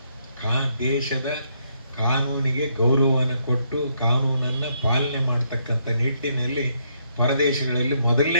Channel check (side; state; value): both; inverted; correlation -0.73